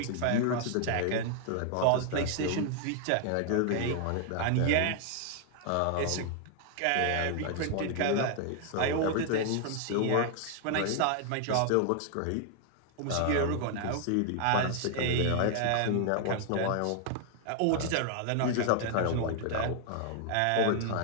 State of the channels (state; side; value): different; both; correlation 0.00